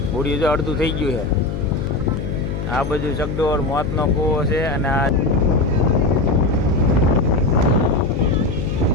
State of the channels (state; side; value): noise; left; hum, 5 dB below the sound